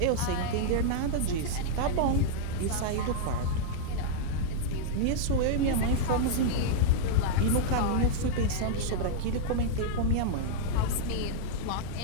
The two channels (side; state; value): both; different; correlation -0.01